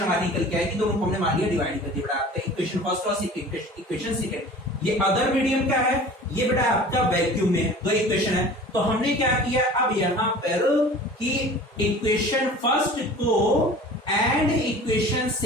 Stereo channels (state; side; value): normal; both; correlation 0.42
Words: हमारी निकल के आएगी, दोनों को हमने मान लिया डिवाइड कर दिया बेटा आपका इक्वेशन फर्स्ट और इक्वेशन सेकंड। ये अदर मीडियम क्या है, ये बेटा आपका वैक्यूम में दो इक्वेशन है। तो हमने क्या किया अब यहां पर कि इक्वेशन फर्स्ट को एंड इक्वेशन